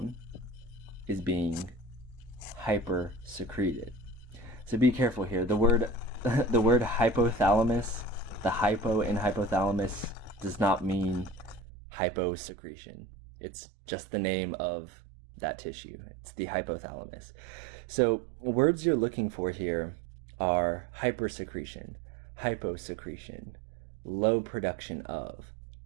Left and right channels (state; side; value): drops out; left; at 11.6 s